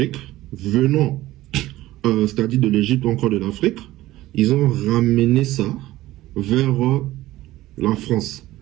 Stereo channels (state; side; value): quieter; left; 16.4 dB